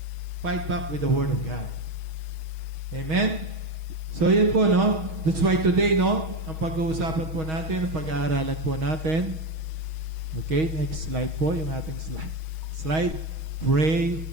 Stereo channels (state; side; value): late; left; 6.3 ms